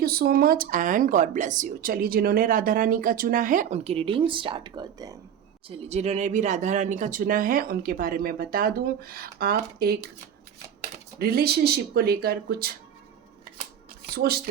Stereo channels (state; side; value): quieter; left; 9.1 dB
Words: you so much and God bless you. चलिए, जिन्होंने राधा रानी का चुना है उनकी रीडिंग स्टार्ट करते हैं। चलिए, जिन्होंने भी राधा रानी का चुना है उनके बारे में बता दूं। आप एक रिलेशनशिप को लेकर कुछ